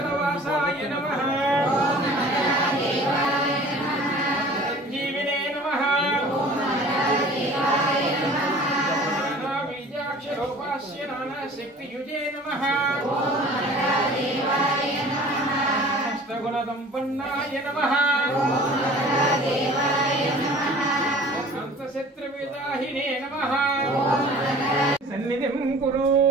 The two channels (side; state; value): both; normal; correlation 0.46